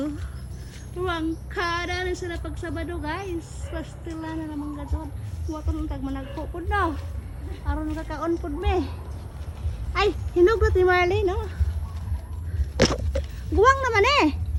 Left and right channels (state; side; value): identical; both; correlation 1.00